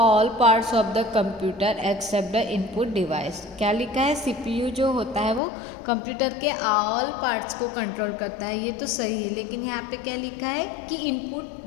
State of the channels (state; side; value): drops out; right; at 5.4 s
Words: all parts of the computer except the input device. क्या लिखा है, CPU जो होता है वो कंप्यूटर के all parts को कंट्रोल करता है, ये तो सही है, लेकिन यहाँ पे क्या लिखा है कि